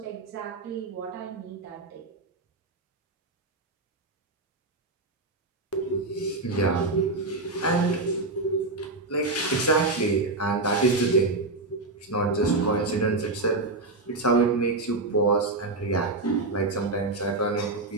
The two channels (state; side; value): quieter; left; 3.2 dB